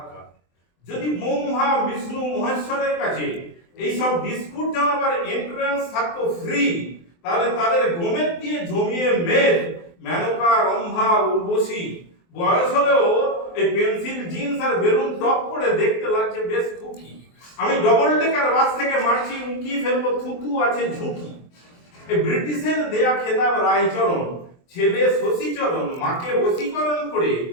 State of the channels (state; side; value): late; right; 23 ms